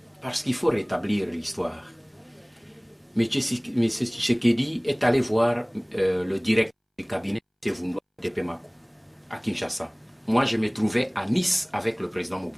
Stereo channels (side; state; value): both; identical; correlation 1.00